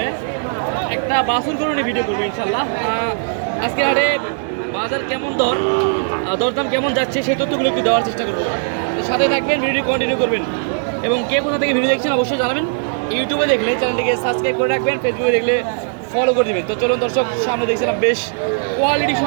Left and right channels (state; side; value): silent; left; digital silence